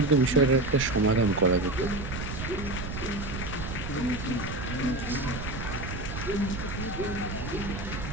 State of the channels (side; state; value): right; noise; rumble, 7 dB below the sound